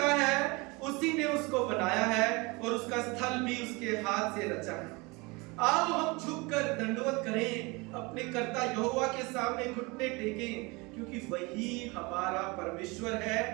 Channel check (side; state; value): left; quieter; 26.0 dB